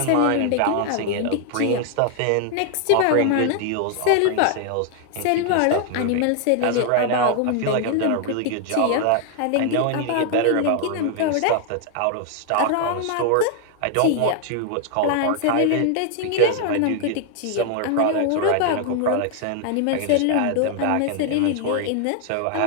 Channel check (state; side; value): different; both; correlation 0.00